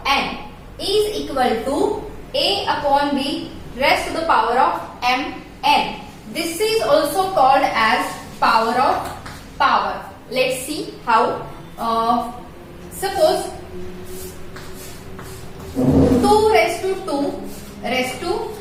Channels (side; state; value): both; identical; correlation 1.00